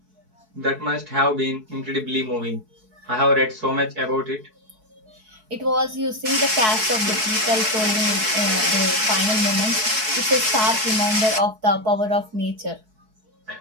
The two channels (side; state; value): left; late; 4.6 ms